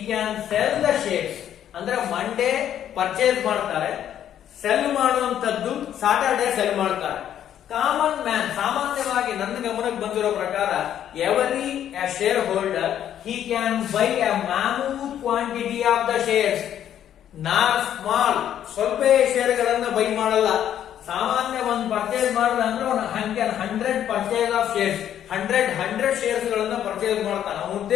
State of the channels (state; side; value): quieter; right; 10.4 dB